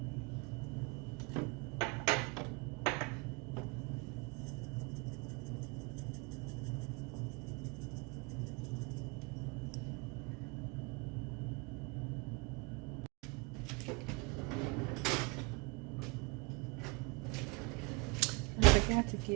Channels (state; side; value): quieter; left; 28.0 dB